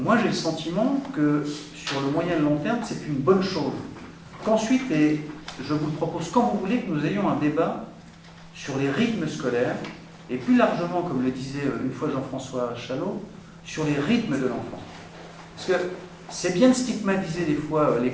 j'ai le sentiment que sur le moyen et le long terme, c'est une bonne chose. Qu'ensuite, et je vous le propose quand vous voulez, que nous ayons un débat sur les rythmes scolaires, et plus largement, comme le disait une fois Jean-François Chalot, sur les rythmes de l'enfant. Parce que c'est bien de stigmatiser des fois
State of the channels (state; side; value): identical; both; correlation 1.00